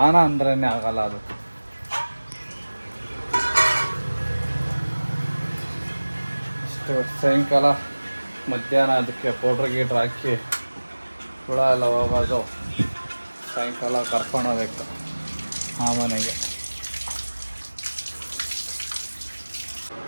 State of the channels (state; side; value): inverted; both; correlation -1.00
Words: ಅಂದ್ರೇ ಆಗಲ್ಲ. ಅದು ಇಷ್ಟು ಸಾಯಂಕಾಲ ಮಧ್ಯಾಹ್ನ ಅದಕ್ಕೆ ಪೌಡ್ರ್ ಗೀಡ್ರ್ ಹಾಕಿ ಹುಳ ಎಲ್ಲ ಹೋಗೋದು. ಸಾಯಂಕಾಲ ಕರ್ಕೊಂಡು ಹೋಗ್ಬೇಕು ಆ ಮನೆಗೆ.